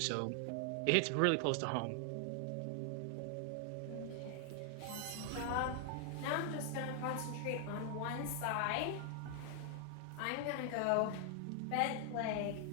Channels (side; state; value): both; different; correlation 0.00